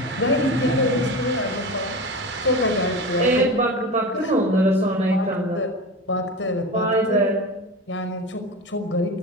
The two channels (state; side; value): normal; both; correlation 0.27